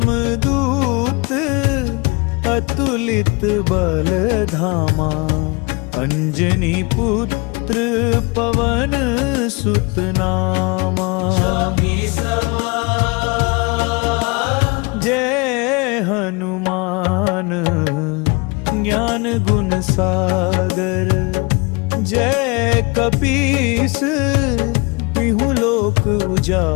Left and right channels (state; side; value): quieter; right; 28.0 dB